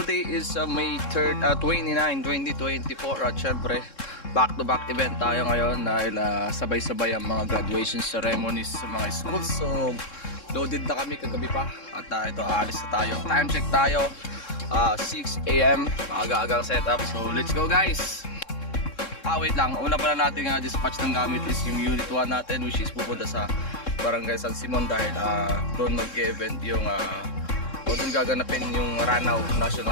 is May 3rd, 29, 2024 at syempre back to back event tayo ngayon dahil sabay-sabay ang mga graduation ceremonies sa mga schools. So loaded na kami kagabi pa at ito aalis na tayo. Time check tayo, 6 AM, aga-agang setup. So let's go guys. Wait lang, una pala natin dispatch ng gamit is yung unit 1 natin, which is pupunta sa Barangay San Simon dahil doon mag-event yung o doon gaganapin yung Ranao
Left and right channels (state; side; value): late; right; 3.7 ms